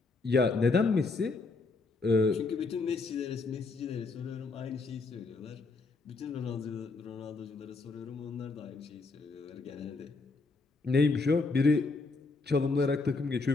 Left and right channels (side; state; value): right; quieter; 3.8 dB